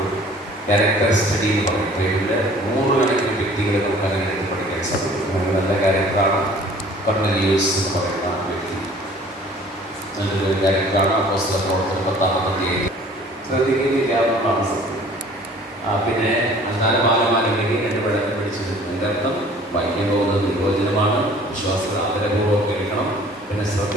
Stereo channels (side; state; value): both; normal; correlation 0.51